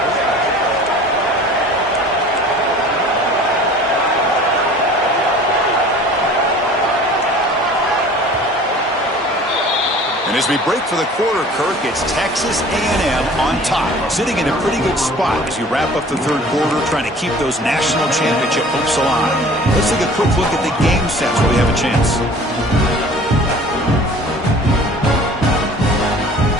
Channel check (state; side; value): normal; both; correlation 0.46